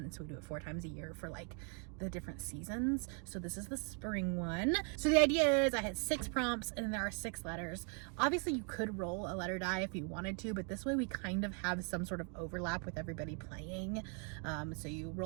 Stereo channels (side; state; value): left; quieter; 39.9 dB